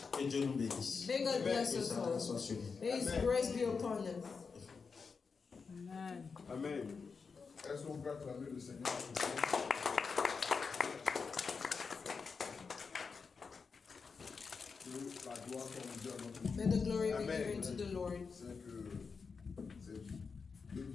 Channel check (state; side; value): quieter; right; 5.2 dB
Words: Que Dieu nous bénisse. May God bless Que us sa all. grâce soit sur nous. May His grace be upon us. Amen. Amen. Est-ce qu'on peut acclamer le Seigneur? Que la gloire soit rendue à notre Dieu. May the glory be Amen. given to the Lord. C'est que c'est deux